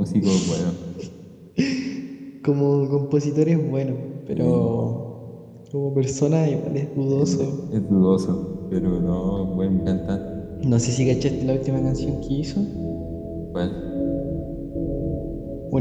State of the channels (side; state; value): both; identical; correlation 1.00